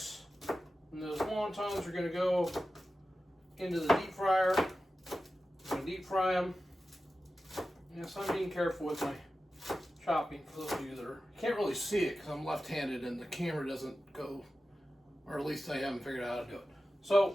and those wontons are going to go into the deep fryer. I'm going to deep fry them. Yes, I'm being careful with my chopping for those of you that can't really see it because I'm left-handed and the camera doesn't go, or at least I haven't figured out how to do it.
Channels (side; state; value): both; normal; correlation 0.93